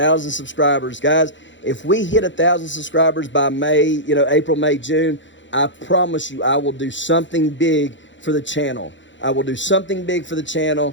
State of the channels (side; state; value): right; late; 0.54 ms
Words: subscribers, guys. If we hit 1,000 subscribers by May, you know, April, May, June, I promise you I will do something big for the channel. I will do something big for the